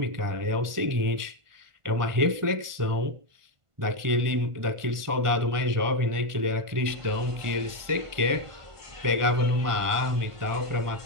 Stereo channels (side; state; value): left; late; 1.5 ms